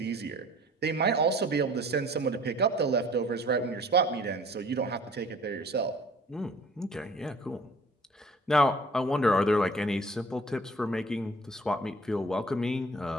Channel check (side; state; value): both; normal; correlation 0.51